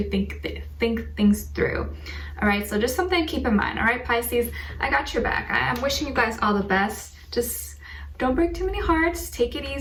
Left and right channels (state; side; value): identical; both; correlation 1.00